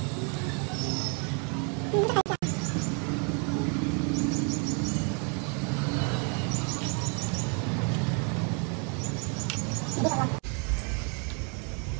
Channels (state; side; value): quieter; left; 37.7 dB